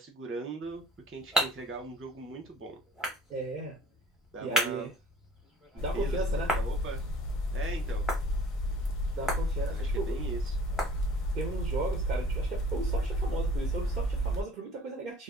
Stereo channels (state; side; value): normal; both; correlation 0.51